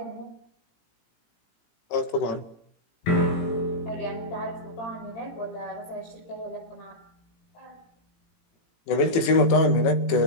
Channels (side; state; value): right; late; 18 ms